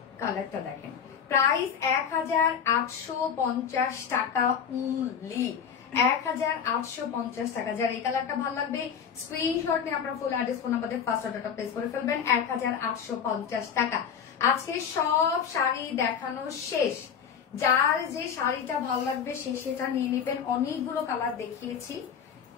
কালারটা দেখেন। প্রাইস 1850 টাকা অনলি, 1850 টাকা। যার এই কালারটা ভালো লাগবে স্ক্রিনশট নিয়ে আপনার ফুল অ্যাড্রেস ফোন নাম্বার দিয়ে ফার্স্ট অর্ডারটা প্লেস করে ফেলবেন। 1850 টাকা। আজকে সব শাড়ি দেখানো শেষ, যার যে শাড়িটা ভালো লাগবে সে সেটা নিয়ে নেবেন। অনেকগুলো কালার দেখিয়েছি,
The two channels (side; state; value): right; quieter; 7.5 dB